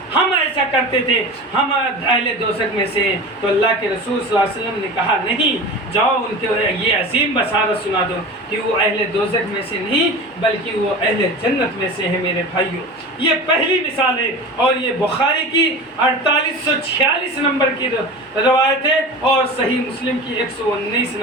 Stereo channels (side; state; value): both; normal; correlation 0.32